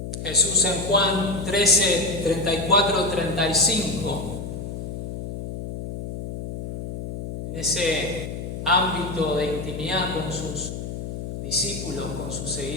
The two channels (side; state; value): left; noise; hum, 7 dB below the sound